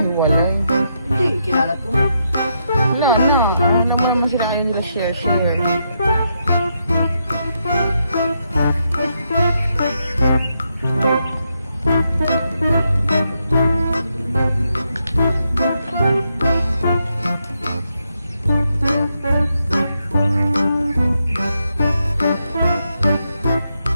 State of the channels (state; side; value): inverted; both; correlation -0.81